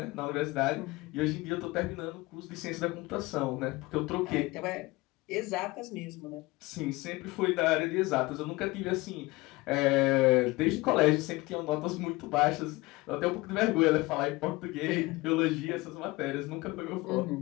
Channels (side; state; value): right; quieter; 21.9 dB